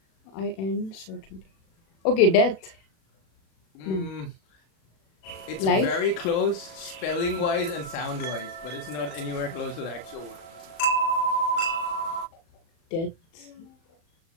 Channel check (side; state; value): right; late; 36 ms